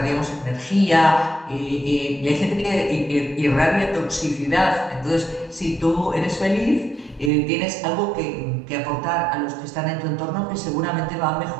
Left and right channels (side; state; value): left; drops out; at 7.3 s